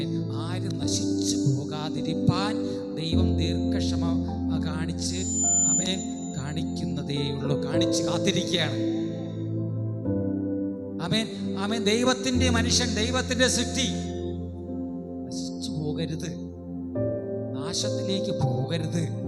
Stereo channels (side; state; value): both; identical; correlation 1.00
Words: ആരും നശിച്ചു പോകാതിരിപ്പാൻ ദൈവം ദീർഘക്ഷമ കാണിച്ച് കാണിക്കുന്നതേയുള്ളൂ, കാണിച്ച് കാത്തിരിക്കുകയാണ്. ആമേൻ. ദൈവത്തിന്റെ മനുഷ്യൻ, ദൈവത്തിന്റെ സൃഷ്ടി നശിച്ചു പോകരുത്, നാശത്തിലേക്ക് പോകരുത്